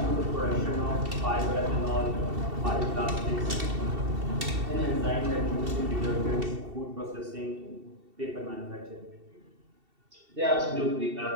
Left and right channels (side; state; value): left; late; 2.7 ms